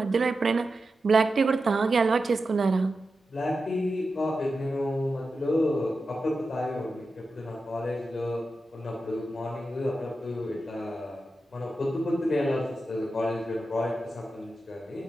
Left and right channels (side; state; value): both; normal; correlation 0.91